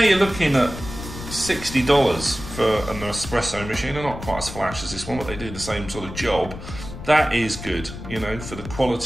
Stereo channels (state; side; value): noise; left; rumble, 11 dB below the sound